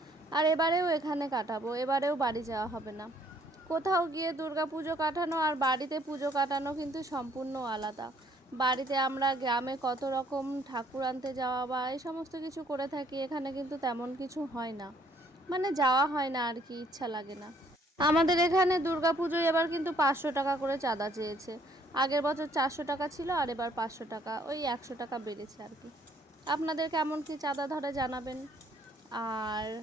আর এবারেও এখানে কাটাবো। এবারেও বাড়ি যাওয়া হবে না। কোথাও গিয়ে দুর্গা পুজো কাটানো আর বাড়িতে পুজো কাটানো কিন্তু সম্পূর্ণ আলাদা। বাড়িতে আমরা গ্রামে কত রকম ঠাকুর আনতে যাওয়া বা এই সমস্ত কিছু করে থাকি, এখানে কিন্তু তেমন কিছু হয় না, মানে যাওয়া হয় না আর কি, ইচ্ছা লাগে না। আমাদের এখানে দুর্গা পুজোয় এবার কিন্তু 500 টাকা করে চাঁদা চেয়েছে। আগের বছর 400 টাকা ছিল, আর এবার 500 টাকা, ওই 100 টাকা বেড়েছে আর কি। আপনাদের কেমন কি চাঁদা ধরে জানাবেন। আর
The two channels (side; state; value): both; normal; correlation 0.64